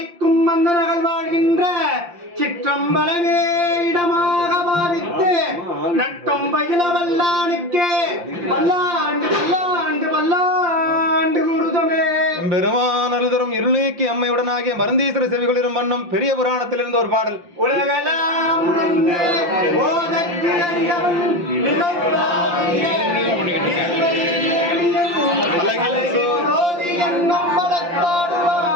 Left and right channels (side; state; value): left; late; 5.8 ms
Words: மன்னர்கள் வாழ்கின்ற சிற்றம்பலமே இடமாக பாவித்து நட்டும் பயில வல்லானுக்கே பல்லாண்டு பல்லாண்டு பல்லாண்டு குருதமே. பெருமானல் தரும் இருள் நீக்கி அம்மையுடனாகிய மருந்தீஸ்வர செவிகளிரும் வண்ணம் பெரிய புராணத்தில் இருந்த ஒரு பாடல். உலகெல்லாம் ஓதற்கு அறியவன்